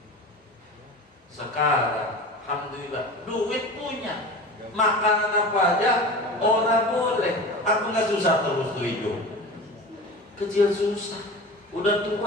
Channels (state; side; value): normal; both; correlation 0.33